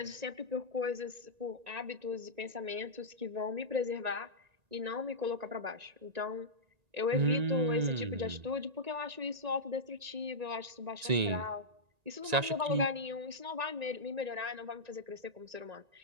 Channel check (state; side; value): late; left; 1.9 ms